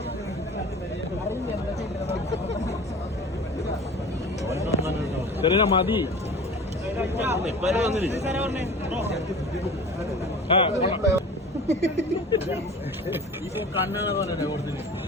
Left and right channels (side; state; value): both; normal; correlation 0.39